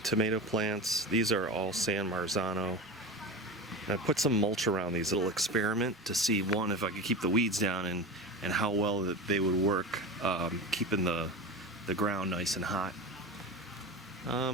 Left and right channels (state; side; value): normal; both; correlation 0.27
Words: tomato plants. These are all San Marzano. I put some mulch around these little experiment to see, one, if I could keep the weeds down and how well that they would work keeping the ground nice and hot.